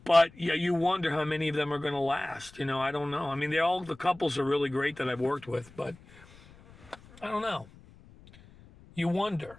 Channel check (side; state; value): left; noise; rumble, 23 dB below the sound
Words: But, yeah, you wonder how many of them are going to last. I don't know. I mean, the couples are really great that I've worked with, but I don't know. You wonder.